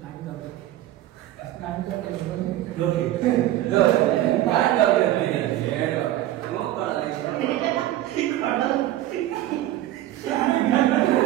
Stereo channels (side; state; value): left; quieter; 14.2 dB